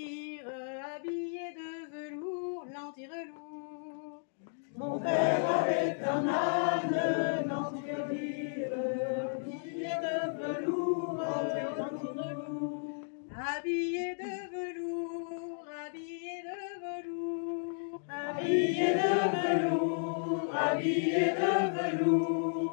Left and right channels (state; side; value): silent; right; digital silence